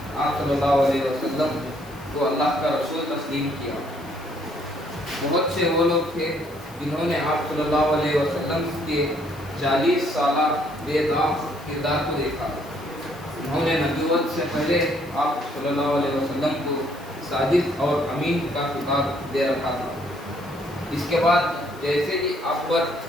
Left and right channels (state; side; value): noise; left; hiss, 24 dB below the sound